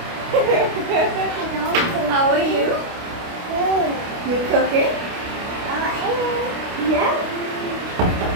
How are you? You cooking? Yeah.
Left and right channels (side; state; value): left; late; 29 ms